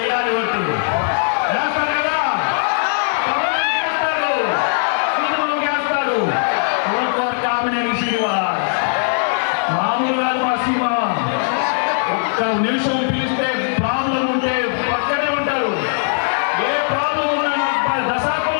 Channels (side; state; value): right; silent; digital silence